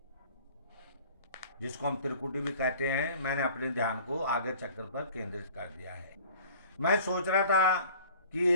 कहते हैं। मैंने अपने ध्यान को आज्ञा चक्र पर केंद्रित कर दिया है। मैं सोच रहा था कि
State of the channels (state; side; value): inverted; both; correlation -0.49